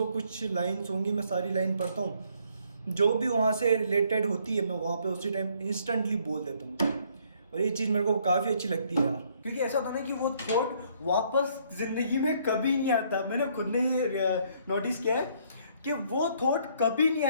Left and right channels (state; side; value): inverted; both; correlation -0.66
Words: कुछ लाइन्स होंगी, मैं सारी लाइन पढ़ता हूँ। जो भी वहाँ से रिलेटेड होती है मैं वहाँ पे उसी टाइम इंस्टेंटली बोल देता हूँ। और ये चीज़ मेरे को काफ़ी अच्छी लगती है यार, क्योंकि ऐसा होता है ना कि वो थॉट वापस ज़िंदगी में कभी नहीं आता। मैंने खुद ने ये नोटिस किया है कि वो थॉट कभी नहीं